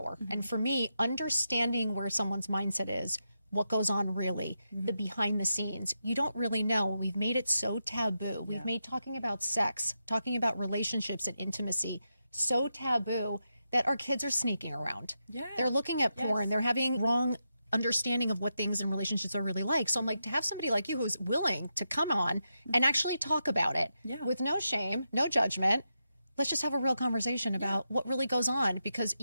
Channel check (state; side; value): inverted; both; correlation -0.87